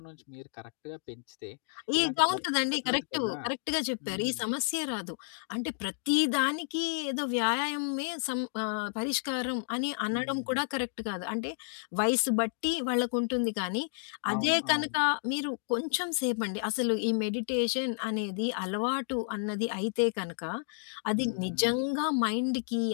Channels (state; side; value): silent; right; digital silence